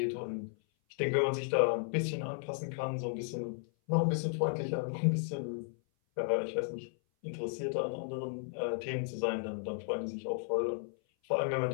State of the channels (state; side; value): silent; right; 55 dB below the other